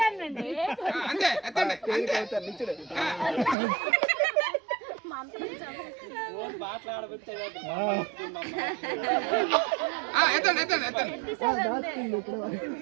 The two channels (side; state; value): left; drops out; at 3.6 s